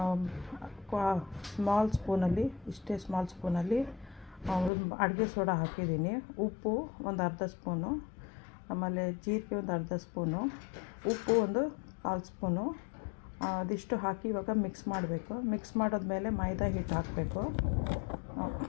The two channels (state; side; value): drops out; right; at 4.7 s